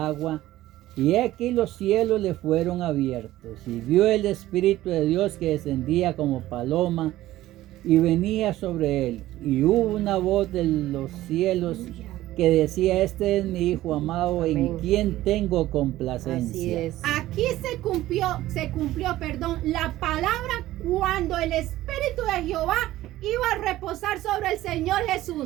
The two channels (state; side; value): quieter; left; 15.4 dB